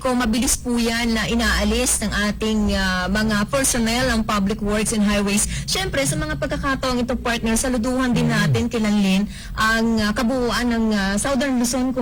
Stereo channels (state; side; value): identical; both; correlation 1.00